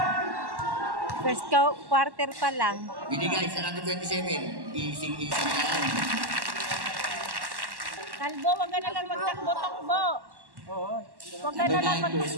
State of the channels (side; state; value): left; late; 1.1 ms